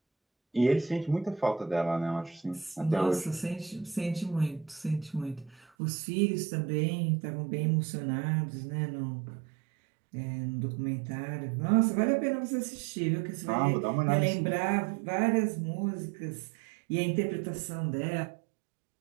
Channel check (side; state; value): left; drops out; at 5.7 s